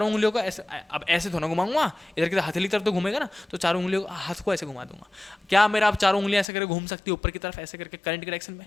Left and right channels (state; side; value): drops out; right; at 6.5 s